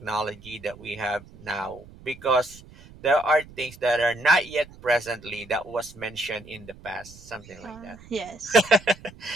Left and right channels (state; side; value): noise; right; rumble, 21 dB below the sound